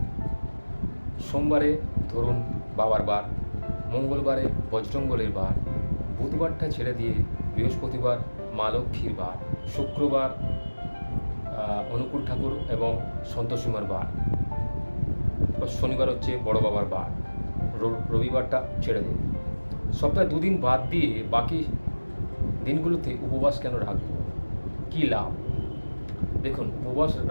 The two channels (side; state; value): both; inverted; correlation -1.00